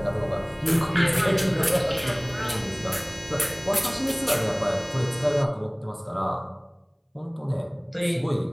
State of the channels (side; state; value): both; identical; correlation 1.00